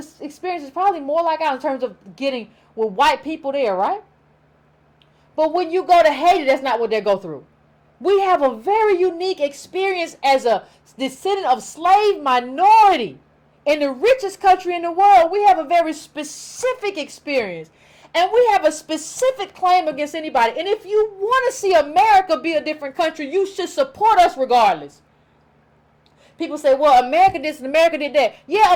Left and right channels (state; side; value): identical; both; correlation 1.00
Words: experience is probably more like ours in terms of getting with white people there, right? But when you go to Haiti, that's not what they go through. We have a very unique experience as a descendant of slave minority in the richest country in the world. We have a very specific experience. And we have a specific claim against anybody. And if you want to see America be a different country, you should support us regardless. People say, well, America did this and America did that. Yeah,